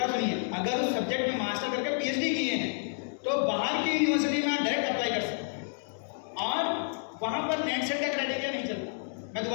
सुनिए, अगर उस सब्जेक्ट में मास्टर करके पीएचडी किए हैं तो बाहर की यूनिवर्सिटी में आप डायरेक्ट अप्लाई कर सकते हैं और वहाँ पर नेट सेट का क्राइटेरिया नहीं चलता। मैं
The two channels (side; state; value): right; silent; digital silence